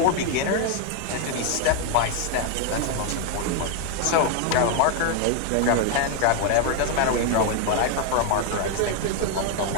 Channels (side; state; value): both; different; correlation 0.00